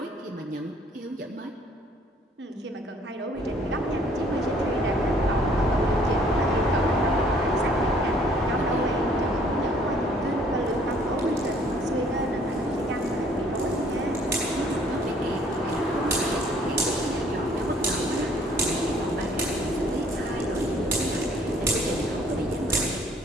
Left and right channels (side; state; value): both; normal; correlation 0.60